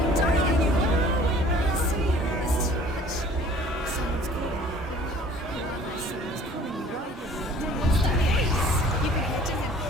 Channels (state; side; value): normal; both; correlation 0.52